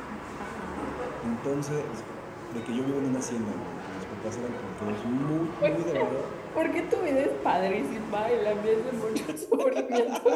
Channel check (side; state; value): both; identical; correlation 1.00